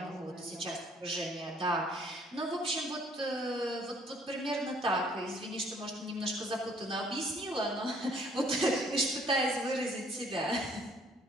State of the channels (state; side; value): normal; both; correlation 0.61